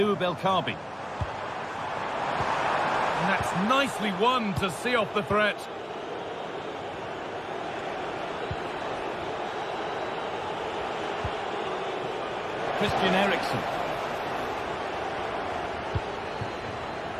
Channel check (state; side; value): identical; both; correlation 1.00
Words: El Kaabi. And that's nicely won to see off the threat. Christian Eriksen.